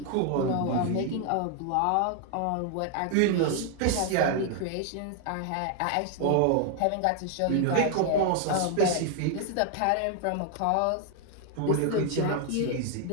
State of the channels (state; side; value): different; both; correlation 0.00